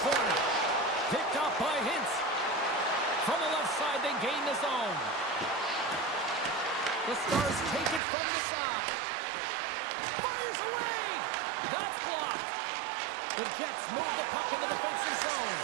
corner. Picked up by Hintz. From the left side, they gain the zone. The Stars take it from the side. Fires away! That's blocked. The Jets move the puck in the defensive zone.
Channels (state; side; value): drops out; left; at 8.0 s